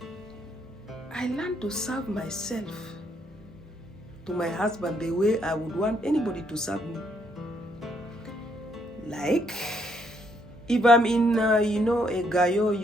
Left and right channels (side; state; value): both; normal; correlation 0.72